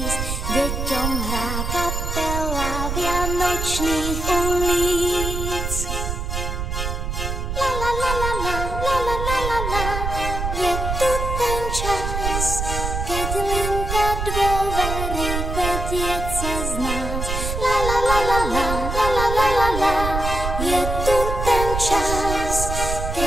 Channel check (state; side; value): noise; right; rumble, 3 dB below the sound